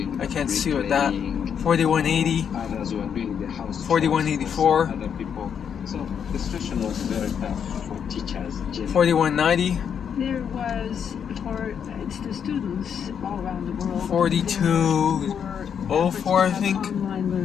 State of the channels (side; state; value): right; quieter; 7.7 dB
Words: I can't see what that. 4180. 4184. So the situation was very tough for teachers. 4190. There was for the students all around the world. 4204, I think. Online